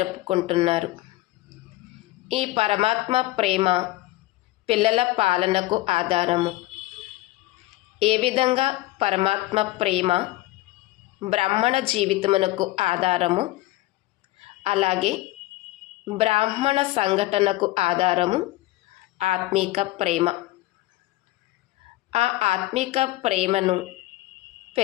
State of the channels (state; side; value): quieter; right; 17.9 dB